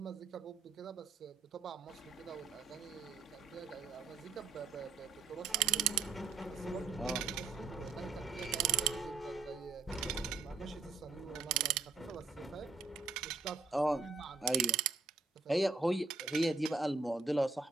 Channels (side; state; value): left; quieter; 4.4 dB